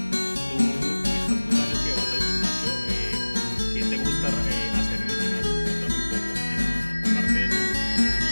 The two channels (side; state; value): both; inverted; correlation -1.00